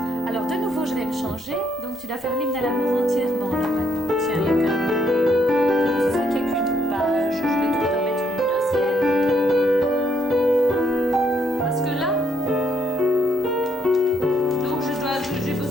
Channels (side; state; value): both; normal; correlation 0.73